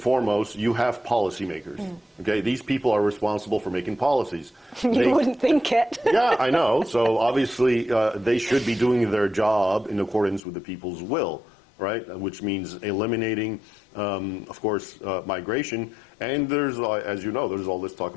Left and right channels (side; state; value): right; drops out; at 10.4 s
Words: foremost, you have policymakers. Okay, these people are responsible for making policies. You wouldn't think it. Yeah, I know. So obviously, they should be doing their job in accordance with the people's will, right? Which means eliminating, of course, migration. And there's, as you know, there's all this talk